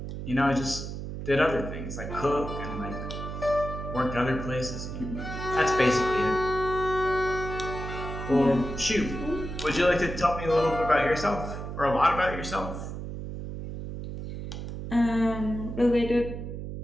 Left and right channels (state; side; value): noise; right; hum, 7 dB below the sound